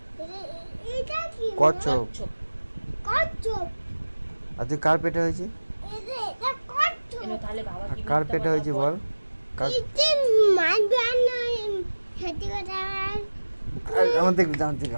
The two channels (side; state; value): both; inverted; correlation -1.00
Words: কচ্ছপ। আর তুই কার পেটে হয়েছিস? তাহলে বাবা কি কার পেটে হয়েছি বল? আমার